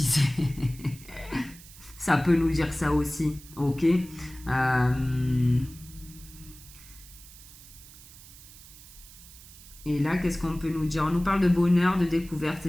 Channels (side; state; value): right; noise; hiss, 19 dB below the sound